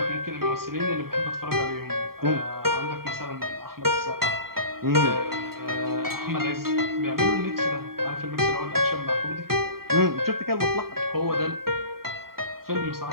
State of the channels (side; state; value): left; late; 0.93 ms